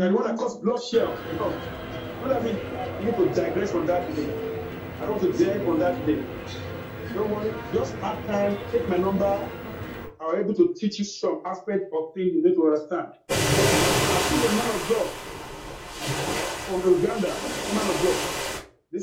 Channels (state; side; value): identical; both; correlation 1.00